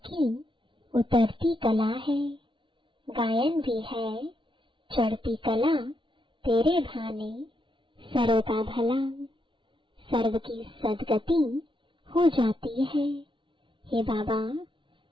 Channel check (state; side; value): late; left; 0.24 ms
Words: की उतरती कला है। गायन भी है चढ़ती कला, तेरे भाने सर्व का भला। सर्व की सदगति हो जाती है। हे बाबा,